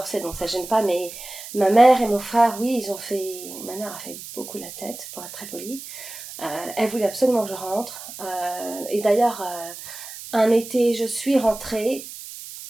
donc ça gêne pas, mais ma mère et mon frère, oui, ma mère a fait beaucoup la tête pour être très polie. Elle voulait absolument que je rentre, et d'ailleurs un été je suis rentrée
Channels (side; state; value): right; noise; hiss, 12 dB below the sound